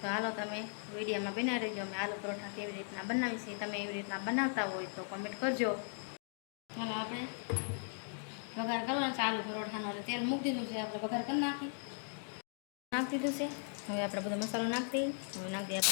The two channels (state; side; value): silent; right; 53 dB below the other